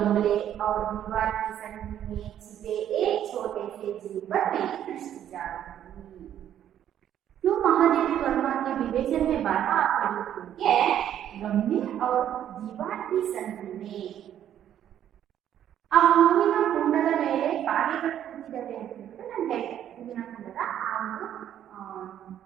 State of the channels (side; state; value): left; quieter; 10.6 dB